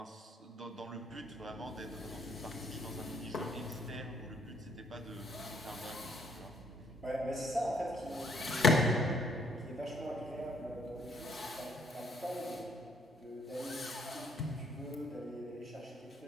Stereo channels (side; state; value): both; normal; correlation 0.66